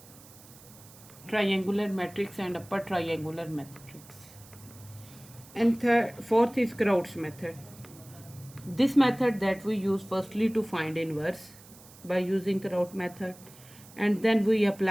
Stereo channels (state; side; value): noise; right; hiss, 22 dB below the sound